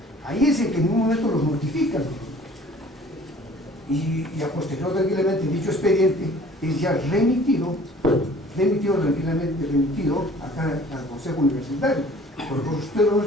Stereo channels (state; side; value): normal; both; correlation 0.51